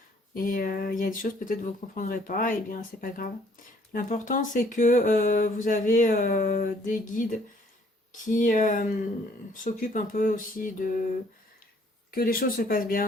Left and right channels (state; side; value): normal; both; correlation 0.62